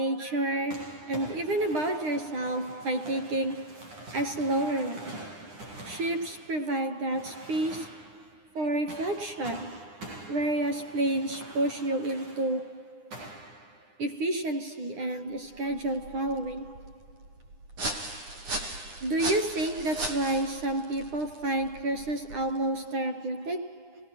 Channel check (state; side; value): late; left; 9.8 ms